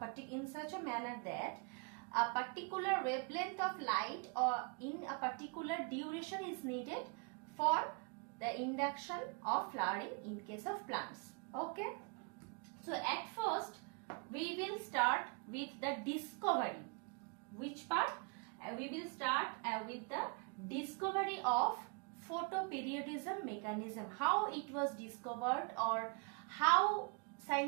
such a manner that a particular wavelength of light or in a particular duration is needed for the induction of flowering in case of plants. Okay. So at first we will start with the discovery. Which part? We will start with the discovery of photoperiodism mechanism, how it was discovered or how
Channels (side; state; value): left; quieter; 35.2 dB